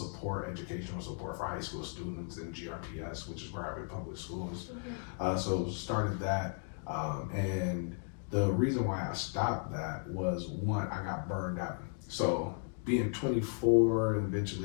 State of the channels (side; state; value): right; silent; 54 dB below the other